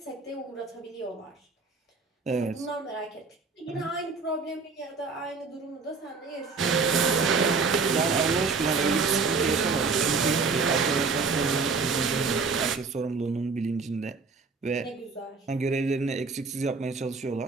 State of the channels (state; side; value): quieter; left; 4.5 dB